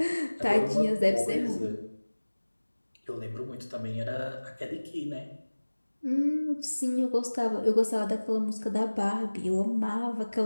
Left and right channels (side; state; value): both; inverted; correlation -1.00